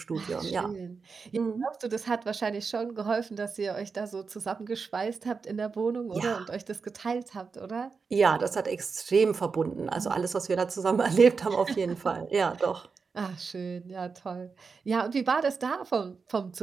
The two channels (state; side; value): quieter; left; 5.0 dB